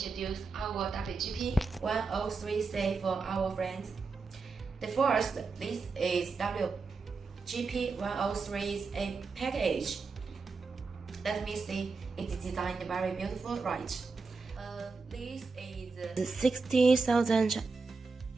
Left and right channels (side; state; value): left; quieter; 4.4 dB